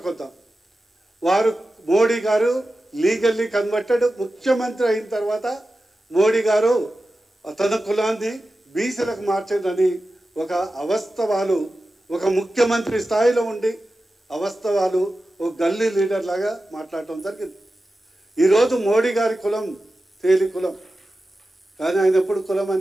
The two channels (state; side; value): normal; both; correlation 0.93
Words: వద్దాం. వారు మోడీ గారు లీగల్లీ కన్వర్టెడ్. ముఖ్యమంత్రి అయిన తర్వాత మోడీ గారు తన కులాన్ని బీసీలకు మార్చిందని ఒక అవస్తవాలు, ఒక ముఖ్యమంత్రి స్థాయిలో ఉండి అవస్తవాలు ఒక గల్లీ లీడర్ లాగా మాట్లాడటం జరిగింది. ఈరోజు మోడీ గారి కులం తేలి కులం, కానీ ఆయన ఎప్పుడు కులం